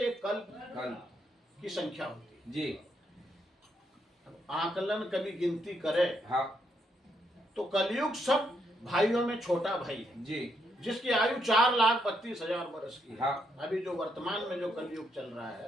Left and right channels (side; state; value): both; normal; correlation 0.77